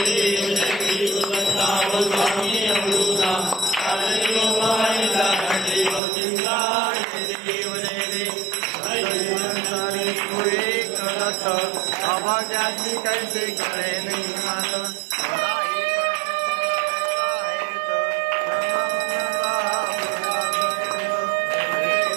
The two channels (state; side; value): drops out; left; at 6.0 s